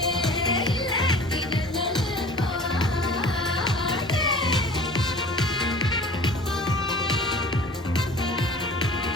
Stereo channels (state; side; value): normal; both; correlation 0.43